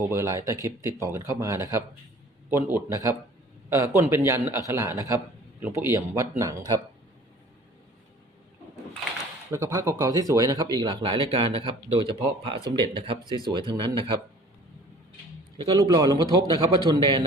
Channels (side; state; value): both; normal; correlation 0.49